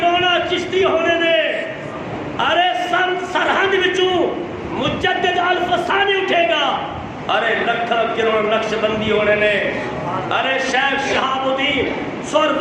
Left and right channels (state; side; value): identical; both; correlation 1.00